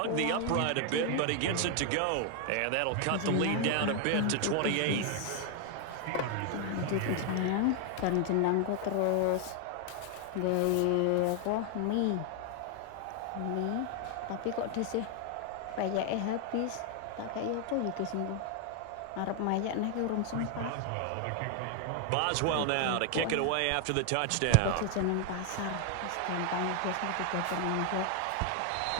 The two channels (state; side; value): different; both; correlation 0.00